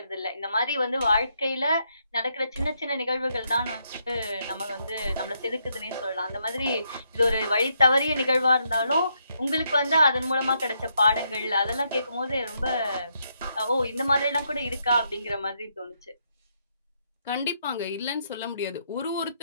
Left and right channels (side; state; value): both; inverted; correlation -0.77